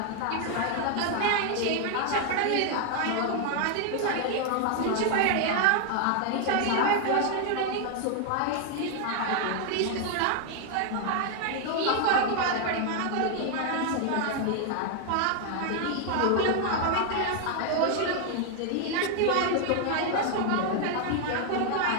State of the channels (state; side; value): different; both; correlation 0.00